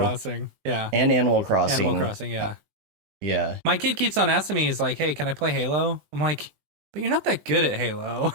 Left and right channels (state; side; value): late; left; 20 ms